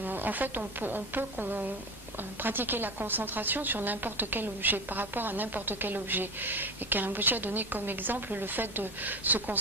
en fait, on peut pratiquer la concentration sur n'importe quel objet, par rapport à n'importe quel objet. Et Rinpoche a donné comme exemple le fait de se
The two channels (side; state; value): both; normal; correlation 0.25